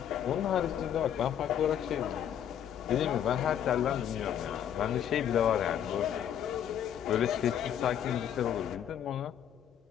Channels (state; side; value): quieter; right; 9.6 dB